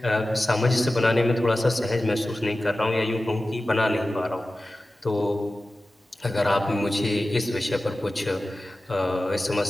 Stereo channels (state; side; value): normal; both; correlation 0.95